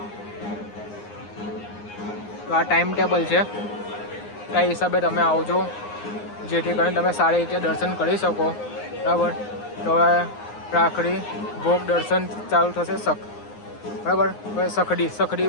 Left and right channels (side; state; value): right; late; 9.7 ms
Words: તો આ ટાઈમ ટેબલ છે. કઈ હિસાબે તમે આવજો જેથી કરીને તમે સારી રીતે દર્શન કરી શકો. બરાબર. તો હવે રાખડી ભોગ દર્શન ચાલુ થશે. બરાબર. હવે